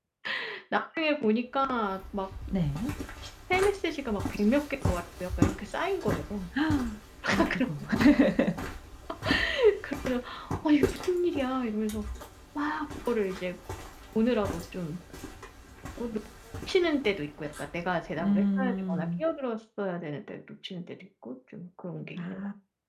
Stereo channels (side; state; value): both; identical; correlation 1.00